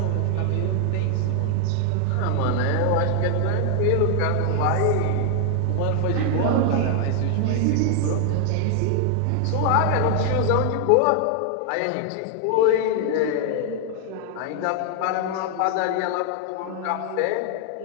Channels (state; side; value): different; both; correlation 0.00